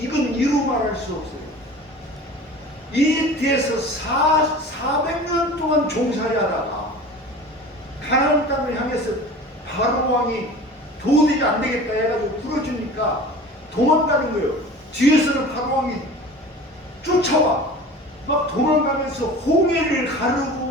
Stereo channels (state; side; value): normal; both; correlation 0.39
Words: 이건 이루 말할 수 없어요. 이 뒤에서 400년 동안 종살이 하다가 가나안 땅을 향해서 바로 왕이 도저히 안 되겠다 해가지고 풀어주니까 도망가는 거예요. 뒤에서는 바로 왕이 쫓아와. 막 도망가면서 홍해를